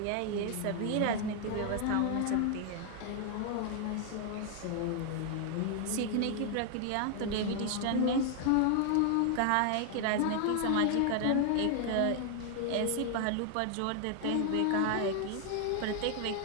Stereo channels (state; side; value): different; both; correlation 0.00